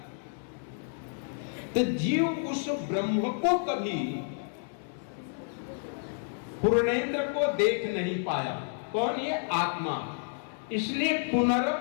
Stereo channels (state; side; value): silent; right; digital silence